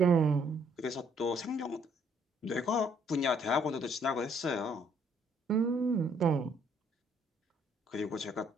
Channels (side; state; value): both; normal; correlation 0.65